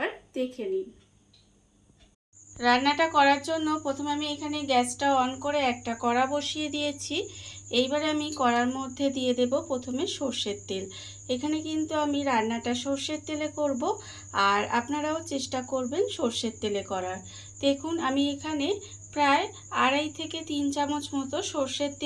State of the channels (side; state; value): both; identical; correlation 1.00